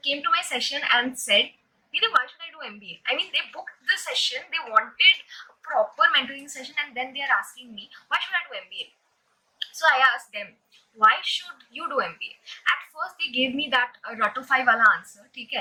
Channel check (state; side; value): identical; both; correlation 1.00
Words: to my session and said, Didi, why should I do MBA? I mean, they booked the session, they wanted a proper mentoring session, and then they are asking me, why should I do MBA? So I asked them, why should you do MBA? At first, they gave me that ratofai wala answer,